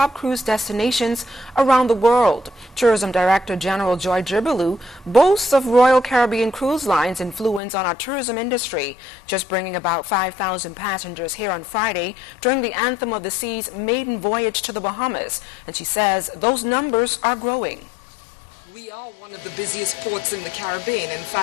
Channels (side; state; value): right; drops out; at 7.6 s